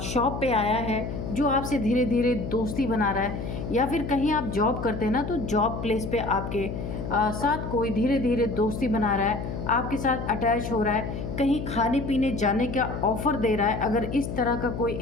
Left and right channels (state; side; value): noise; left; hum, 5 dB below the sound